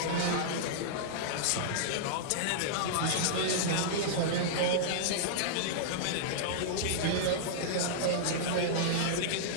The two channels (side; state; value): both; different; correlation -0.02